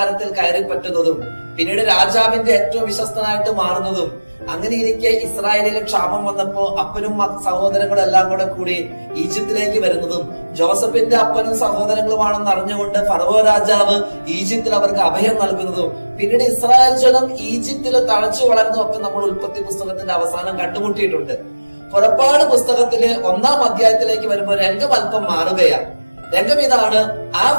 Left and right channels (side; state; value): both; inverted; correlation -1.00